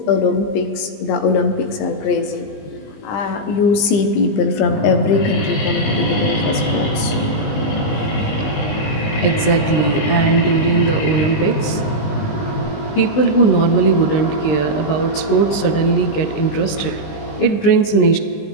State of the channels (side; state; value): right; late; 20 ms